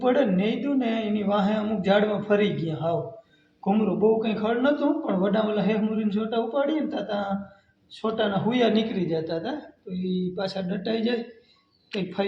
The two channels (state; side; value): identical; both; correlation 1.00